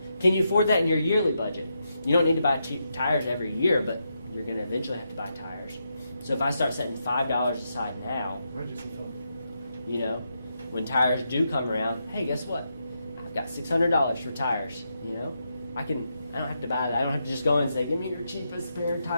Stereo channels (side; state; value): both; inverted; correlation -0.83